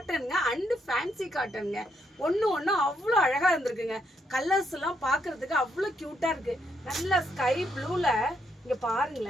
அண்டு ஃபேன்சி காட்டனுங்க. ஒன்று அவ்வளோ அழகாக இருந்திருக்குங்க. கலர்ஸ் எல்லாம் பார்க்கறதுக்கு அவ்வளோ க்யூட்டாக இருக்குது. நல்ல ஸ்கை ப்ளூவில் இங்கே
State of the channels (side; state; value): both; normal; correlation 0.76